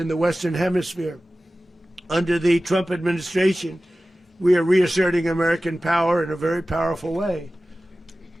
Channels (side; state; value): both; normal; correlation 0.96